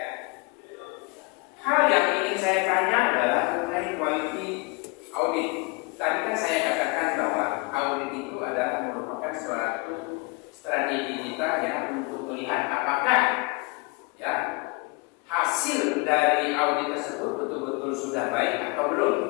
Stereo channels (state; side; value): quieter; right; 28.7 dB